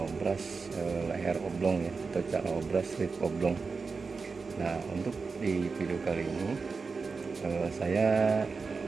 leher oblong ya, atau cara obras rip oblong. Nah, untuk di video kali ini saya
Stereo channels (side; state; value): left; quieter; 4.6 dB